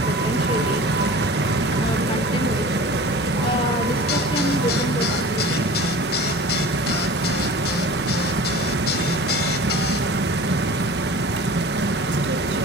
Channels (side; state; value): both; normal; correlation 0.39